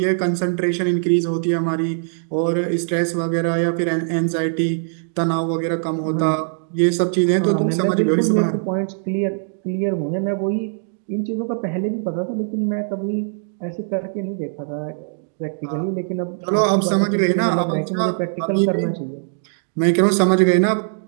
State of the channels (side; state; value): left; silent; digital silence